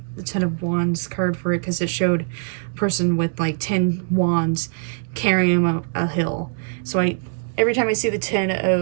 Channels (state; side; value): silent; left; digital silence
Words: Ten of Wands card for it, because it showed a person with like 10 wands carrying a hill. So every time I see the Ten